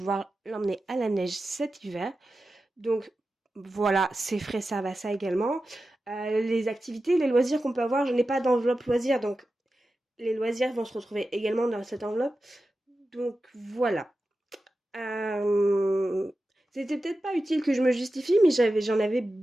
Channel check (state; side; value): normal; both; correlation 0.93